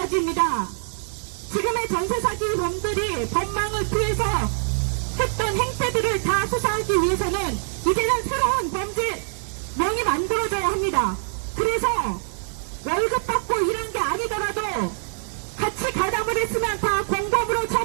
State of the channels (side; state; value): left; silent; digital silence